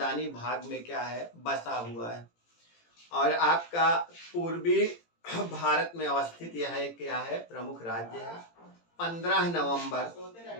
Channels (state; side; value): late; right; 18 ms